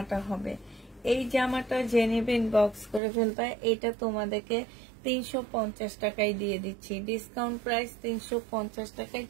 হবে। এই জামাটা যে নেবে ইনবক্স করে ফেলবে। এটা তোমাদেরকে 350 টাকায় দিয়ে দিচ্ছি, ডিসকাউন্ট প্রাইস 350 টাকায়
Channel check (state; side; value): drops out; left; at 3.0 s